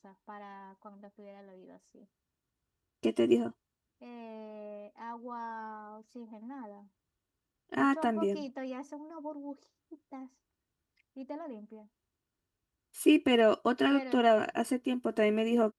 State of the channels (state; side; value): identical; both; correlation 1.00